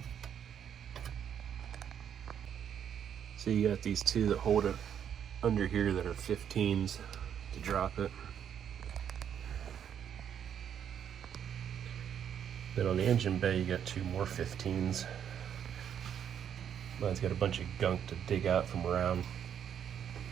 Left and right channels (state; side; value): quieter; left; 8.8 dB